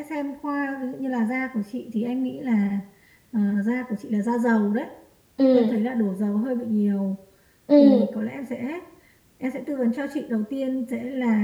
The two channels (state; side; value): identical; both; correlation 1.00